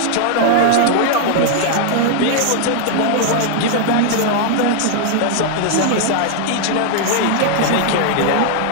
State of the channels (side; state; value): both; different; correlation 0.00